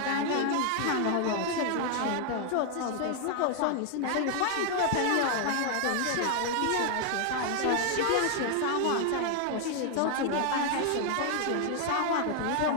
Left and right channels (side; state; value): both; different; correlation 0.00